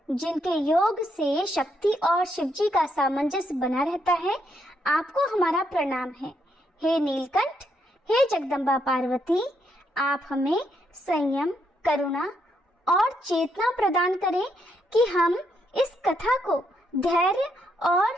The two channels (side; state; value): both; normal; correlation 0.76